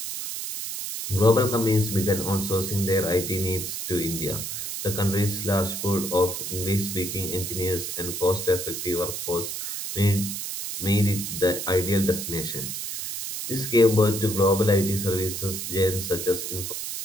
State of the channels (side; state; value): right; noise; hiss, 5 dB below the sound